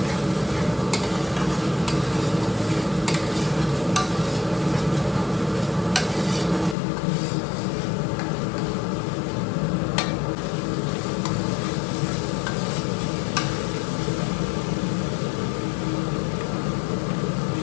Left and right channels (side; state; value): right; drops out; at 6.8 s